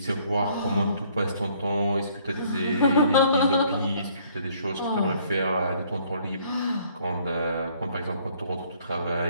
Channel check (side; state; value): both; inverted; correlation -0.62